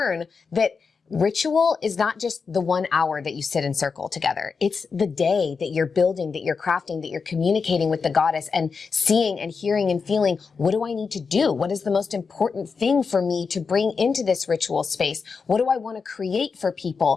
that ritual is not just the 1 hour that you sit in circle together. It's the day that you're building, that you're crafting, that you're communicating with the goddess and seeing and hearing and feeling, what do I need to do? What is the most important thing for me to bring into this ritual space? What do I want to create for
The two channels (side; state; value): right; quieter; 5.2 dB